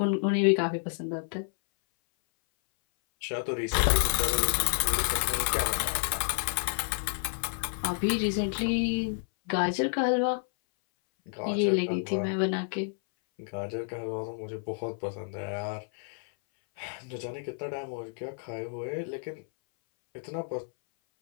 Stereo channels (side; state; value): right; silent; 58 dB below the other